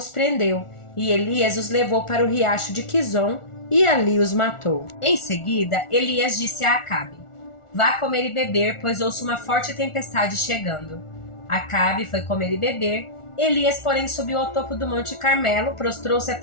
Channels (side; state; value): right; late; 1.4 ms